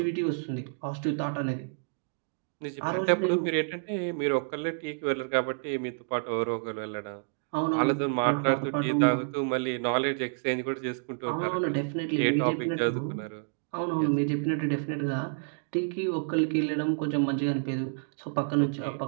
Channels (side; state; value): left; silent; digital silence